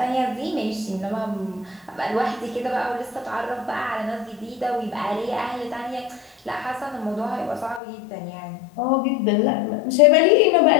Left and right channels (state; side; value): drops out; right; at 7.8 s